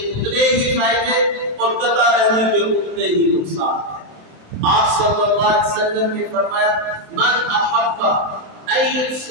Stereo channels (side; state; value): left; late; 27 ms